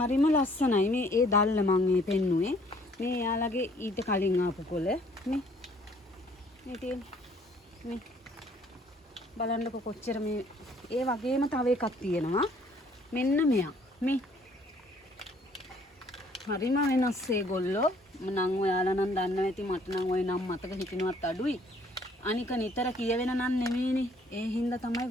ලස්සනයි. මේ ඒ දැල්ල මම මේ පෙන්නුවේ. මේ එයාලගේ ඊට කලින් ආපු කොළ මේ තියෙන මේ බලන්නකො කොච්චර මේ ඒ වගේම තව එකක් තියෙනවා. මෙන්න මෙයා. මේ හරිම වෙනස් ඒගොල්ලෝ. මනම් ඔයාලා නම් දන්නවා ඇති. මට නම් ওই නම් මතක හිටිනවත් අඩුයි. අනික නිතර කියවෙන නම් නෙමෙයිනේ. ඒ හින්දා තමයි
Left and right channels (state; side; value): normal; both; correlation 0.60